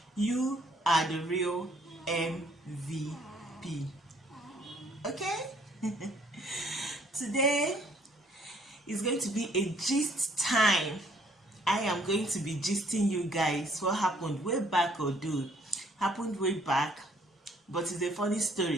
You are the real MVP. Okay? Today is going to be a gist time. I am going to be gisting you guys what happened way back, happened way back, but it's a funny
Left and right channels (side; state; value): both; normal; correlation 0.63